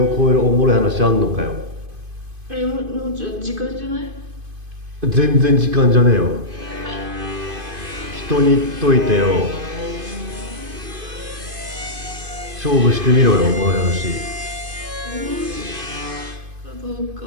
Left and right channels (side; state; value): left; late; 2.5 ms